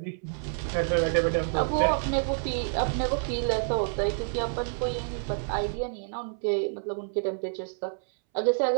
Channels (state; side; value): silent; left; 59 dB below the other